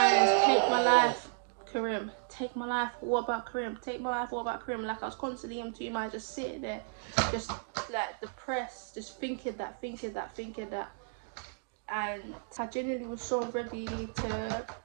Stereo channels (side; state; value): left; silent; digital silence